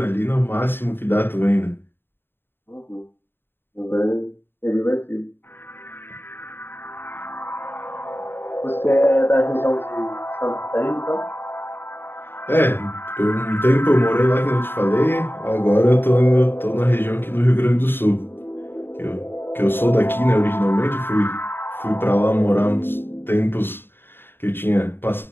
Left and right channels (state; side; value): late; right; 0.10 ms